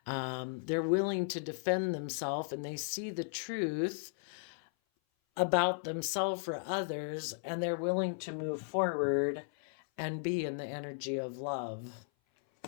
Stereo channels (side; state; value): right; silent; 54 dB below the other